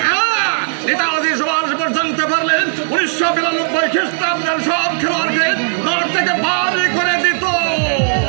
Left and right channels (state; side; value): silent; left; 66 dB below the other